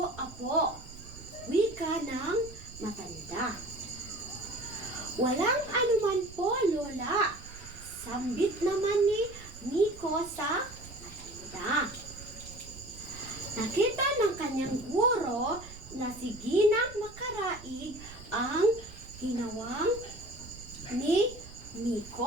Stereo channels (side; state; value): right; noise; rumble, 17 dB below the sound